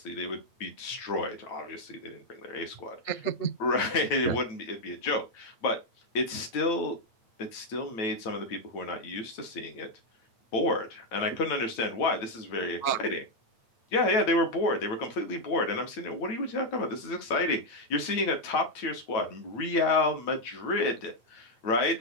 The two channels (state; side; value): late; right; 9.1 ms